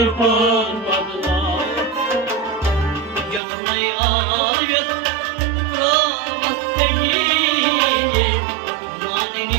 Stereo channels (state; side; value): drops out; left; at 3.4 s